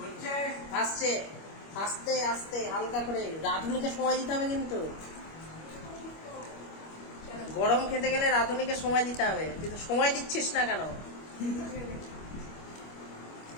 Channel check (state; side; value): late; right; 25 ms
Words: হচ্ছে আসছে। আস্তে আস্তে হালকা করে, রাঁধুনিকে সময় দিতে হবে কিন্তু। গরম খেতে গেলে রাঁধুনিকে সময় দিতে হবে, তুই তো সময় দিচ্ছিস না কেন?